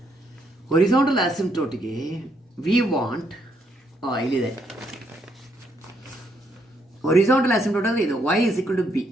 Horizontal ಆಸಿಂಪ್ಟೋಟಿಗೆ we want ಇಲ್ಲಿದೆ. Horizontal asymptote ಅಂದರೆ ಇದು y is equal to b.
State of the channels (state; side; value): normal; both; correlation 0.73